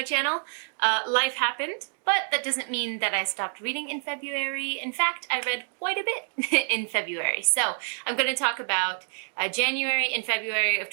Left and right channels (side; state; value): left; silent; digital silence